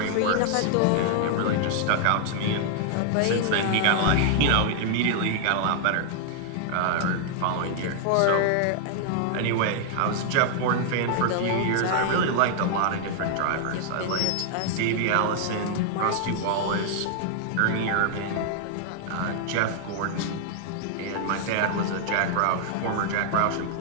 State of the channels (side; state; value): both; different; correlation 0.00